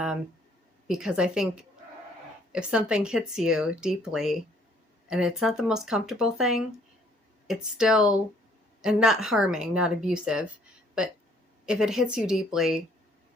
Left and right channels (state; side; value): normal; both; correlation 0.62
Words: Because I think if something hits you deeply and it's not the most comfortable thing, it's still, and not harming, not abusive, but if it hits you deeply,